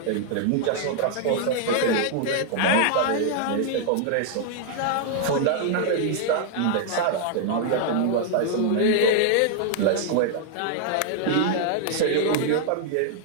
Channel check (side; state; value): both; different; correlation -0.01